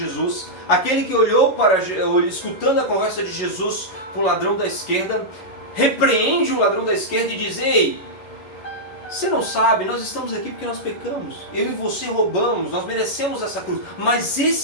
aquele que olhou escutando a conversa de Jesus com o ladrão da esquerda, repreende o ladrão da esquerda e diz, ei, você não sabe, nós estamos aqui porque nós pecamos, eu e você roubamos, nós merecemos essa cruz, mas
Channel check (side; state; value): right; late; 11 ms